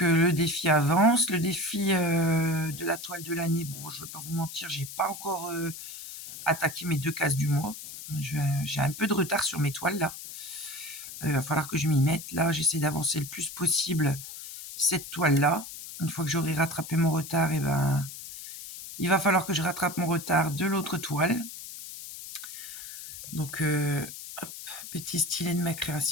le défi avance. Le défi de la toile de l'année, bon, je ne vais pas vous mentir, j'ai pas encore attaqué mes 2 cases du mois. J'ai un peu de retard sur mes toiles là. Il va falloir que je m'y mette. Là, j'essaie d'avancer le plus possible cette toile là. Une fois que j'aurai rattrapé mon retard, il va falloir que je rattrape mon retard de l'autre toile. Donc, hop, petit stylet de ma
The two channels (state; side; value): noise; left; hiss, 11 dB below the sound